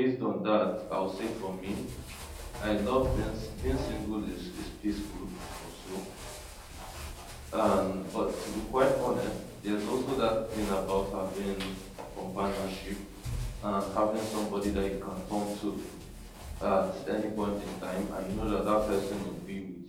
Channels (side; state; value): both; identical; correlation 1.00